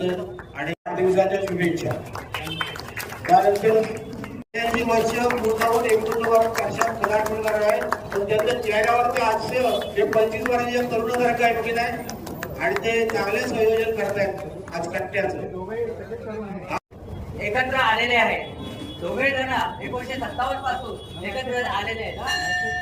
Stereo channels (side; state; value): both; identical; correlation 1.00